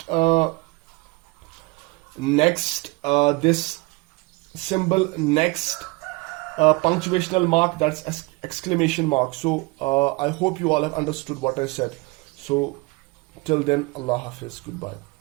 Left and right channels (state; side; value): quieter; left; 24.5 dB